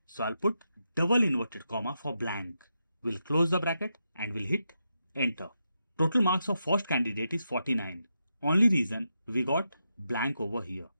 So I'll put double inverted comma for blank. We'll close the bracket and we'll hit enter. Total marks of first candidate is 49. Only reason we got blank over here.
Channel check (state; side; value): inverted; both; correlation -0.85